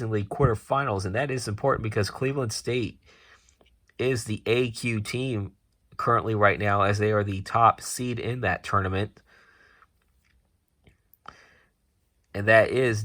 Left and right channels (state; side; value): identical; both; correlation 1.00